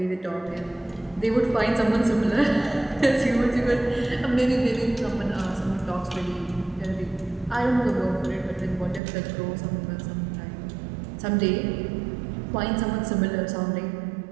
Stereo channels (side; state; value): left; drops out; at 9.0 s